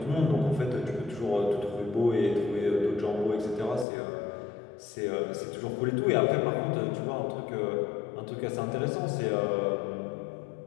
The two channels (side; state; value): right; drops out; at 3.9 s